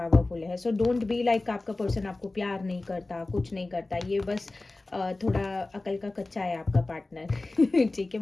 है। सो डोंट बी लाइक आपका पर्सन आपको प्यार नहीं करता, कुछ नहीं करता, ये बस थोड़ा अकल का कच्चा है आपका पार्टनर ठीक है?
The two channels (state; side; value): quieter; right; 3.1 dB